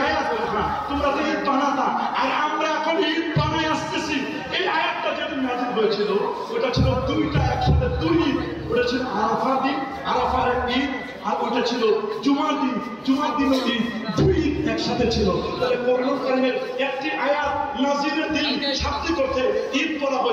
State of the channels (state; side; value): identical; both; correlation 1.00